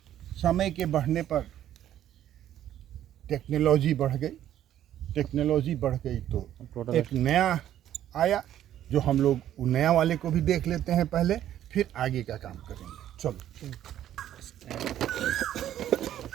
समय के बढ़ने पर टेक्नोलॉजी बढ़ गई तो एक नया आया, जो हम लोग वो नया वाले को भी देख लेते हैं पहले, फिर आगे का काम करेंगे। चलो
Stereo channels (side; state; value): left; quieter; 11.6 dB